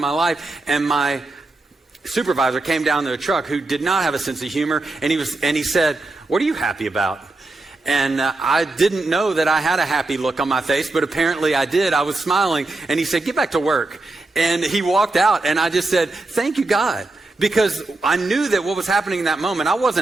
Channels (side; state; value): left; quieter; 3.1 dB